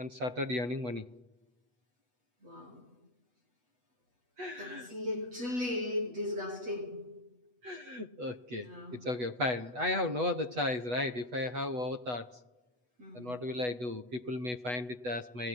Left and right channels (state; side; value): late; left; 8.1 ms